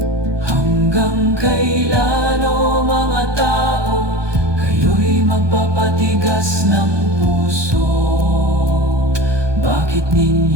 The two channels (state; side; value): late; left; 1.2 ms